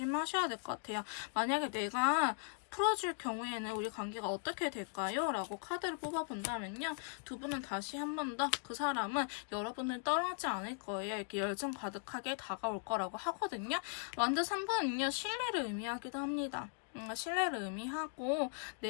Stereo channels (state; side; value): silent; right; 52 dB below the other